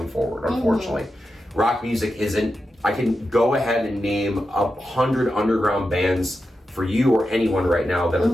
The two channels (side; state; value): both; normal; correlation 0.90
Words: forward, unfortunately. Rock music isn't. I can go ahead and name 100 underground bands for you or anyone right now that are